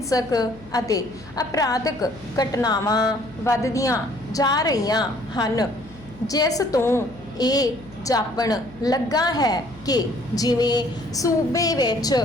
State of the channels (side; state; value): left; noise; hum, 22 dB below the sound